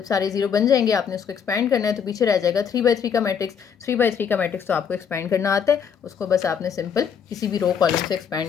सारे 0 बन जाएंगे आपने उसको एक्सपैंड करना है, तो पीछे रह जाएगा 3/3 का मैट्रिक्स। 3/3 का मैट्रिक्स तो आपको एक्सपैंड करना आता है, उसको बस आपने सिंपल किसी भी रो कॉलम से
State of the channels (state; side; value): quieter; right; 7.3 dB